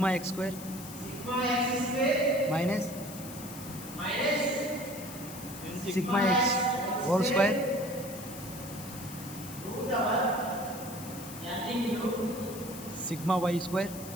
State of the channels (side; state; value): left; noise; hiss, 13 dB below the sound